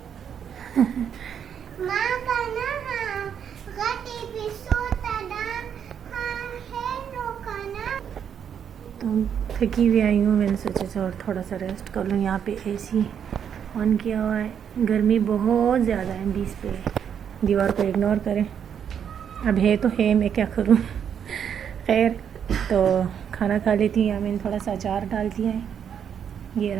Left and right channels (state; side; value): quieter; left; 8.2 dB